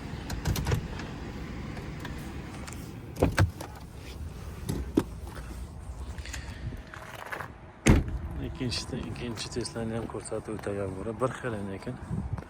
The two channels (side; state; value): both; identical; correlation 1.00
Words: İkinci Tesla'ni ham ko'rsatib o'tagan bo'lib, bir xil ekan.